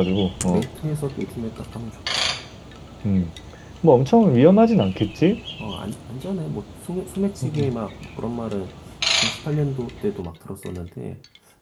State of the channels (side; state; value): both; identical; correlation 1.00